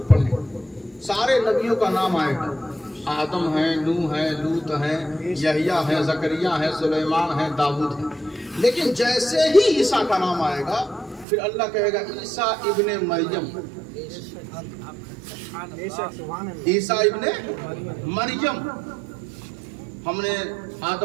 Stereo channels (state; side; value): drops out; left; at 11.2 s